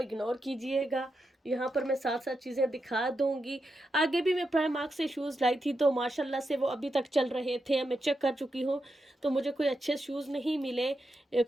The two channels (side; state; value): both; normal; correlation 0.86